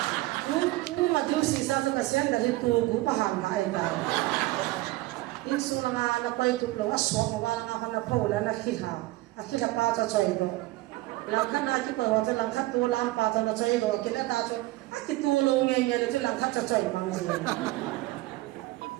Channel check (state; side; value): quieter; left; 19.3 dB